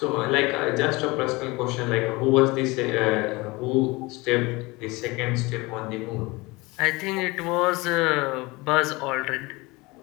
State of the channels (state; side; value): quieter; right; 23.4 dB